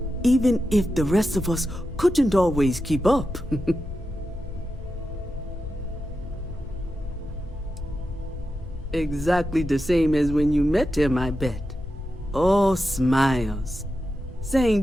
Even if the rest of us couldn't always keep up. Exactly the same as when you met him, I bet. Oh, smiles.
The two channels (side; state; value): both; normal; correlation 0.89